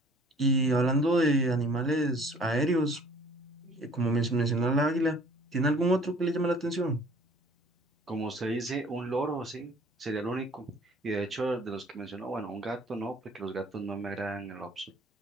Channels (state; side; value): normal; both; correlation 0.52